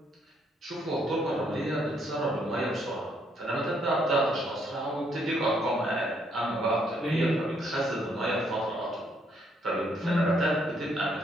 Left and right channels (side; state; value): both; normal; correlation 0.71